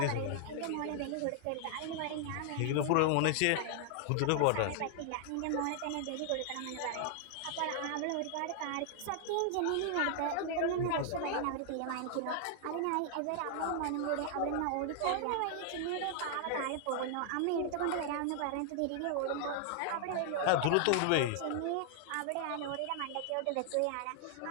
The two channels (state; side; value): different; both; correlation 0.00